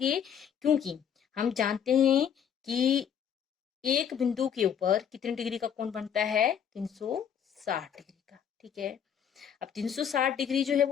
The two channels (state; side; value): quieter; right; 8.3 dB